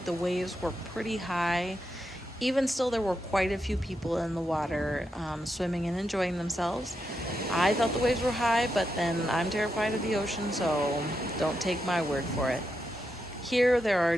the waves were pretty high. Even still, there were quite a few people in the water swimming and enjoying themselves. I thought the waves were high, but then I'm terrified of the ocean, so don't take my word for it. Here there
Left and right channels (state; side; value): normal; both; correlation 0.85